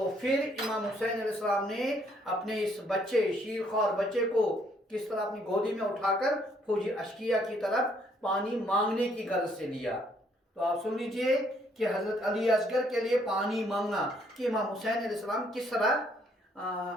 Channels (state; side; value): normal; both; correlation 0.67